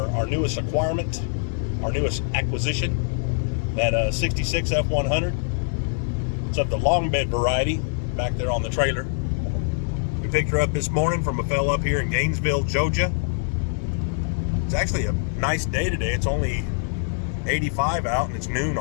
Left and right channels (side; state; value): right; silent; digital silence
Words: newest acquirement, our newest acquisition, that 66 F100. It's of the longbed variety, back there on the trailer. We picked her up this morning from a fella up here in Gainesville, Georgia. It's actually a nice day today. It's only 85 out and it's noon